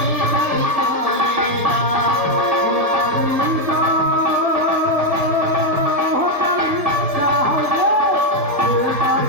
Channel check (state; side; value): late; left; 1.7 ms